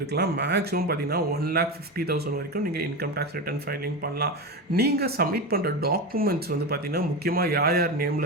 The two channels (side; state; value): both; normal; correlation 0.20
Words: இருக்கலாம். மேக்ஸிமம் பார்த்தீங்கன்னா 1,50,000 வரைக்கும் நீங்கள் இன்கம் டேக்ஸ் ரிட்டர்ன் ஃபைலிங் பண்ணலாம். நீங்கள் சப்மிட் பண்ணுற டாக்குமெண்ட்ஸ் வந்து பார்த்தீங்கன்னா, முக்கியமாக யார் யார்